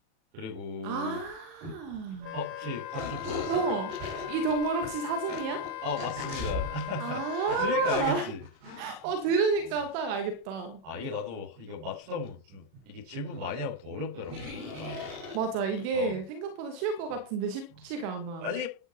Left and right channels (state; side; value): late; left; 37 ms